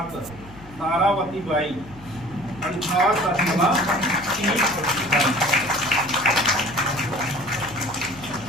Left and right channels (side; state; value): left; noise; hum, 19 dB below the sound